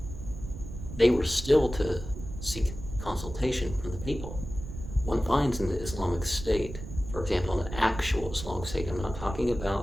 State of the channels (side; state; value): right; noise; rumble, 10 dB below the sound